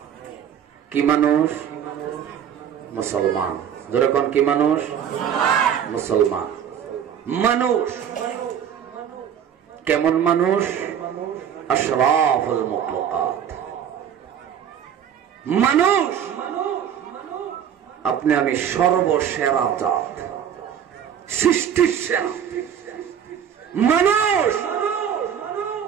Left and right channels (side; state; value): left; quieter; 8.8 dB